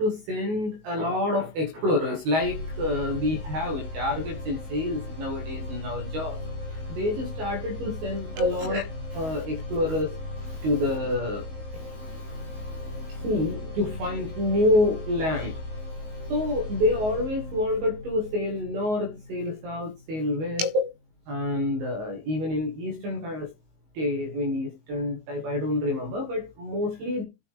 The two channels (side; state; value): left; late; 19 ms